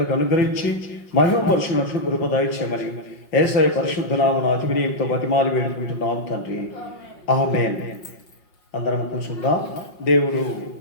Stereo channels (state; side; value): late; right; 5.5 ms